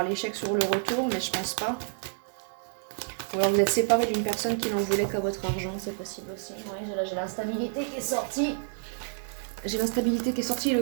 l'échec sur le retour, mais je pense pas. Ou alors vous êtes séparé d'une personne qui n'en voulait qu'à votre argent, c'est possible aussi. Oui, j'ai l'instabilité qui est sortie. J'ai l'instabilité qui est sortie,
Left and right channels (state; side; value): silent; left; digital silence